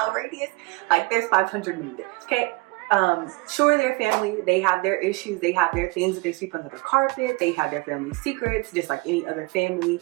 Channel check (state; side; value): quieter; left; 26.1 dB